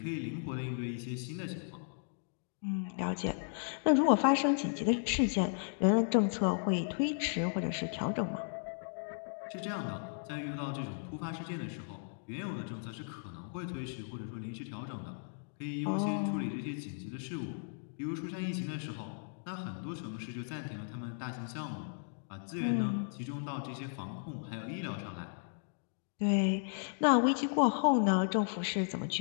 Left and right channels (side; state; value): right; silent; digital silence